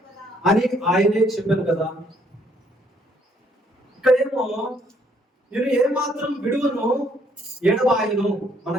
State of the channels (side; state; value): both; normal; correlation 0.67